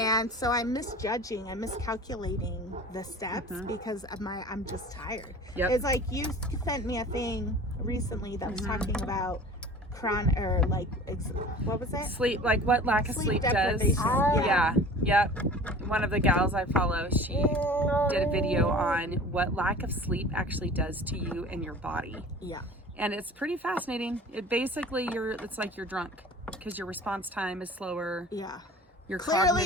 so I'm miscalculating the steps because of I'm just tired. Yep. It's like you sent me a thing recently that was talking about what was it? Sleep, like what lack of sleep does. Yeah. Yep. One of the gals I follow, she did a video on what lack of sleep actually does to you and your body. Yeah. And it's pretty fascinating. It basically, it's like you're drunk because your response time is slower. Yeah. Your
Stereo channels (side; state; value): both; normal; correlation 0.42